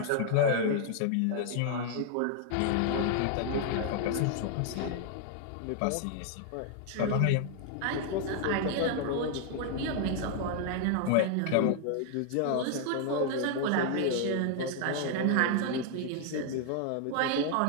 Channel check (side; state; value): both; different; correlation 0.00